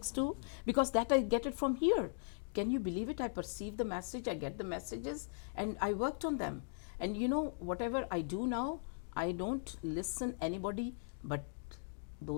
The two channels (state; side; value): silent; right; digital silence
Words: too, because that I get it from here. Can you believe it? I perceive the message, I get the messages, and I worked on them. And whatever I do now, I don't listen anybody but